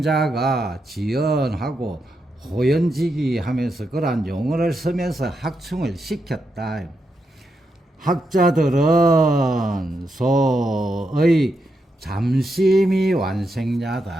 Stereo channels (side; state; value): both; normal; correlation 0.84